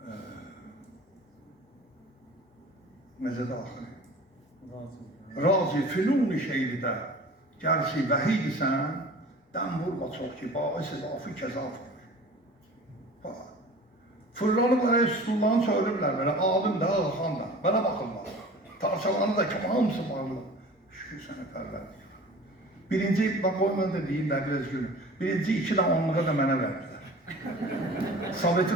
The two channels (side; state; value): both; normal; correlation 0.42